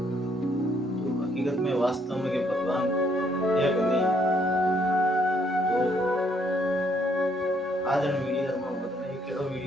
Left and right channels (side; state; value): both; normal; correlation 0.69